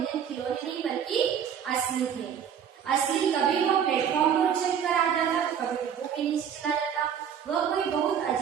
खिलौने नहीं बल्कि असली थे। असली कभी वह प्लेटफॉर्म पर उछल कर आ जाता तो कभी डिब्बों के नीचे चला जाता। वह कोई बहुत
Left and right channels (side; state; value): left; quieter; 8.3 dB